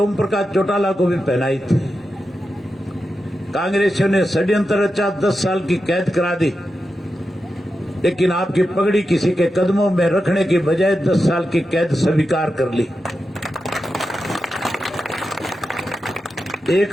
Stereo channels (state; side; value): normal; both; correlation 0.90